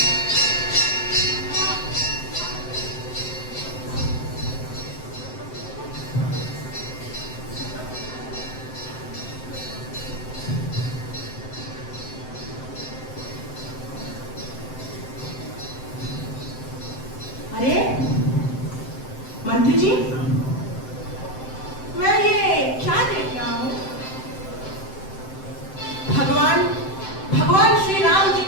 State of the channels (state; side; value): late; right; 7.8 ms